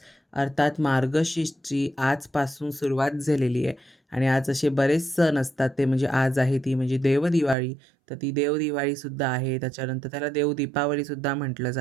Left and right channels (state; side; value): drops out; left; at 7.6 s